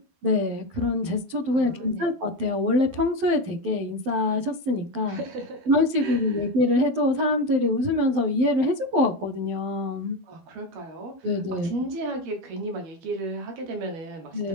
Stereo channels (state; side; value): late; left; 12 ms